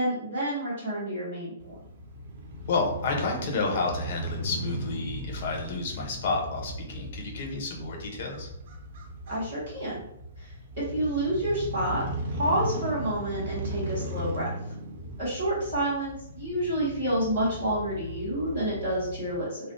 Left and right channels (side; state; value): both; inverted; correlation -0.48